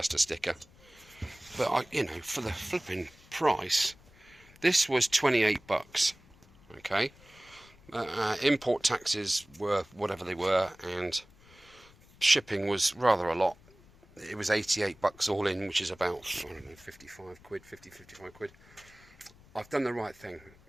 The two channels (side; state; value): left; noise; rumble, 26 dB below the sound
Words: a sticker, but you know, for the flipping price, this was 28 bucks. Okay, import taxes were whatever they were, and shipping was rather a lot. It was 88 bucks all in, which is about, I don't know, 55 quid, 55 quid. I've done the right thing,